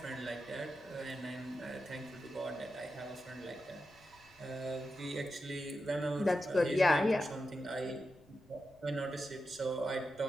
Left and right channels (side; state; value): left; noise; rumble, 27 dB below the sound